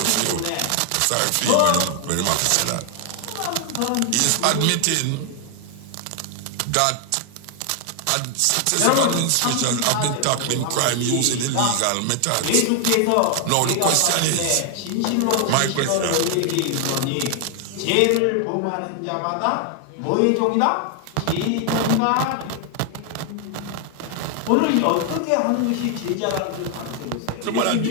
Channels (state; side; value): different; both; correlation 0.00